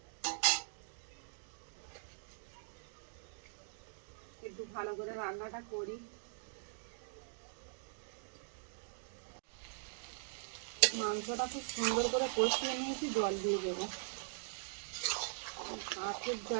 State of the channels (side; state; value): left; silent; digital silence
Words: একটু ভালো করে রান্নাটা করি। মাংসটা খুব সুন্দর করে কষিয়ে নিয়েছি, জল দিয়ে দেবো। কাঠের